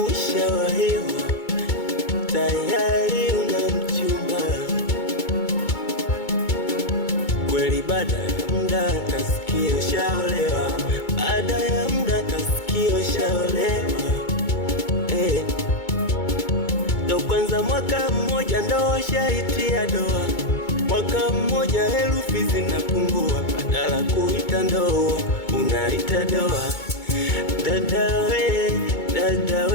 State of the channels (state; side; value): late; right; 2.2 ms